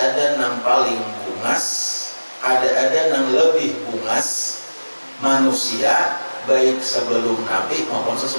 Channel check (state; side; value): inverted; both; correlation -1.00